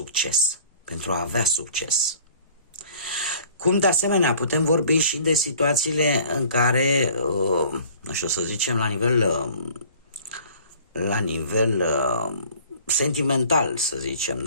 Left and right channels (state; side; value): inverted; both; correlation -0.50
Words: pentru a avea succes. Cum de asemenea putem vorbi și de situațiile în care, nu știu să zicem, la nivel sentimental, să zicem,